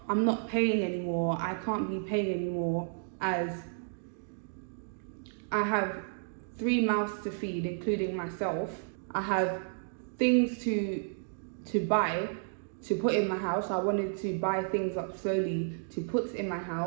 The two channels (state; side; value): silent; left; digital silence